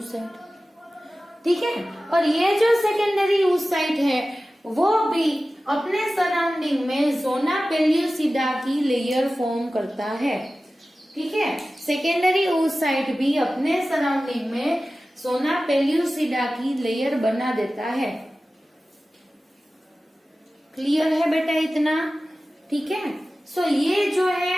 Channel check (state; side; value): normal; both; correlation 0.96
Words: ठीक है। और ये जो सेकेंडरी oocyte है वो भी अपने सराउंडिंग में जोना पेल्यूसिडा की लेयर फॉर्म करता है, ठीक है। सेकेंडरी oocyte भी अपने सराउंडिंग में जोना पेल्यूसिडा की लेयर बना देता है। क्लियर है बेटा इतना, ठीक है। सो ये जो है